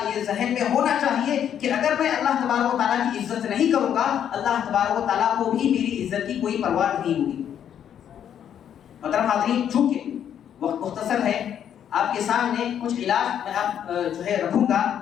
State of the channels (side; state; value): right; quieter; 9.4 dB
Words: یہ ذہن میں ہونا چاہیے کہ اگر میں اللہ تبارک و تعالیٰ کی عزت نہیں کروں گا، اللہ تبارک و تعالیٰ کو بھی میری عزت کی کوئی پرواہ نہیں ہوگی۔ محترم حاضرین، چونکہ وقت مختصر ہے، آپ کے سامنے کچھ علاج میں آپ جو ہے رکھوں گا